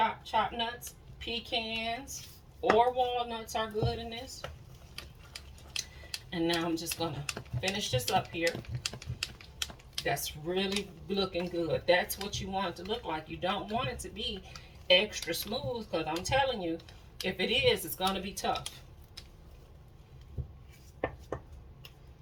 nuts. Pecans or walnuts are good in this. And now I'm just gonna finish this up here. That's really looking good. That's what you want it to look like. You don't want it to be extra smooth, because I'm telling you, if it is, it's gonna be tough.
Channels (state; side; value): identical; both; correlation 1.00